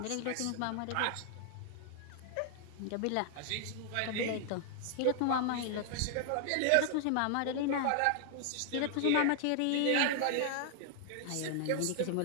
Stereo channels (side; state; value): both; different; correlation 0.00